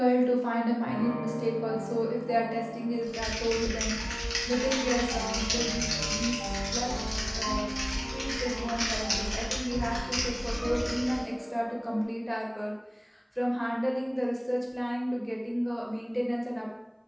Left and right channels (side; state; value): both; identical; correlation 1.00